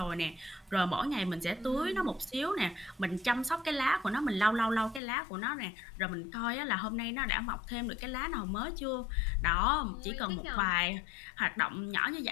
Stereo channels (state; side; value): drops out; right; at 5.0 s